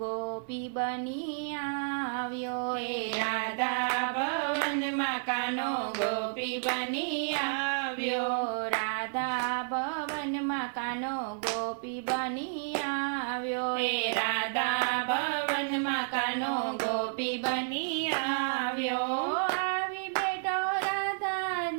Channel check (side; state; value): left; silent; digital silence